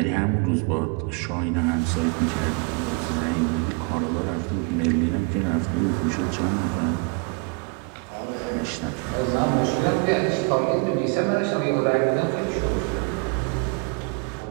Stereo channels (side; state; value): left; quieter; 31.2 dB